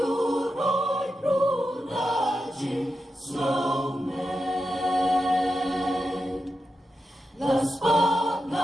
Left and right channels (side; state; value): both; normal; correlation 0.88